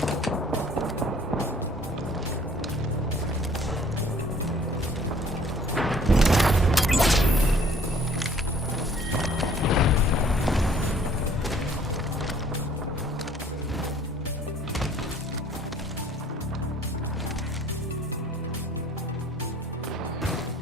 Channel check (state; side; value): normal; both; correlation 0.56